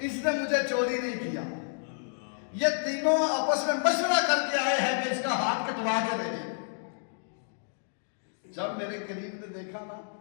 نے مجھے چوری نہیں کیا. یہ تینوں آپس میں مشورہ کر کے آئے ہیں کہ اس کا ہاتھ کٹوا کے دے دیں. جب میرے کریم نے دیکھا نا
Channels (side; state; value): right; silent; digital silence